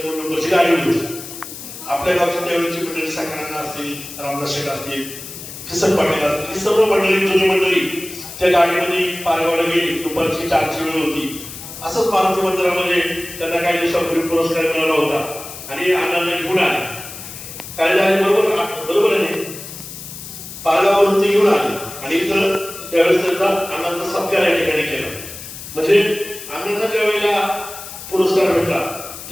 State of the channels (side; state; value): left; noise; hiss, 12 dB below the sound